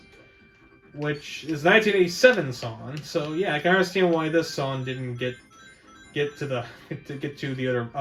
which is a 1987 song. So yeah, I can understand why this song didn't get to the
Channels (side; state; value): both; identical; correlation 1.00